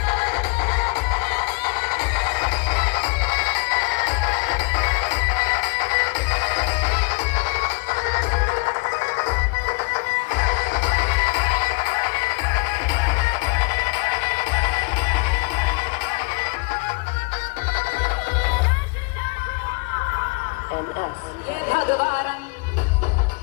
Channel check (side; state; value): right; quieter; 30.7 dB